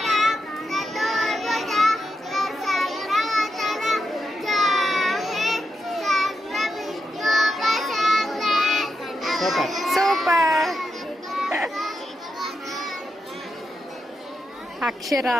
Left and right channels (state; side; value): normal; both; correlation 0.86